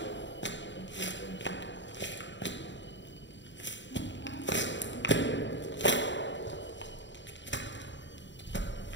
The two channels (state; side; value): late; right; 0.53 ms